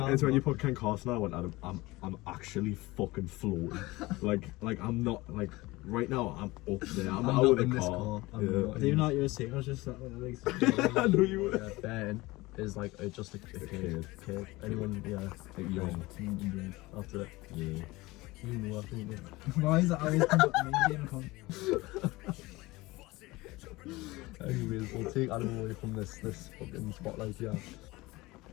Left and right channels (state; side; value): quieter; right; 20.9 dB